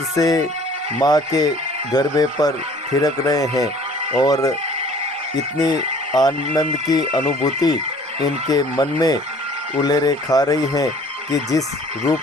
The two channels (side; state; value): both; normal; correlation 0.52